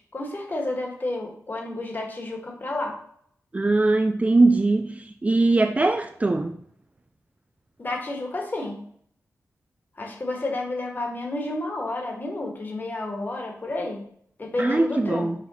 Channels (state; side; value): normal; both; correlation 0.93